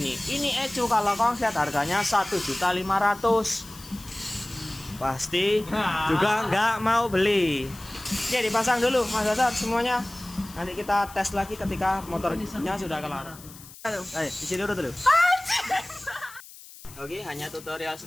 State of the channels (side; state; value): left; noise; hiss, 18 dB below the sound